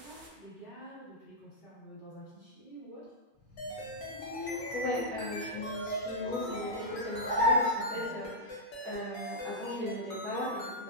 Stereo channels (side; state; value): both; normal; correlation -0.08